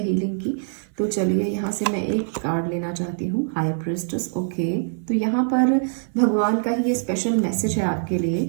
हीलिंग की। तो चलिए, यहाँ से मैं एक कार्ड लेना चाहती हूँ, हाई प्रिस्टेस। ओके, तो यहाँ पर भगवान का ही ये स्पेशल मैसेज है आपके लिए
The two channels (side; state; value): left; silent; 62 dB below the other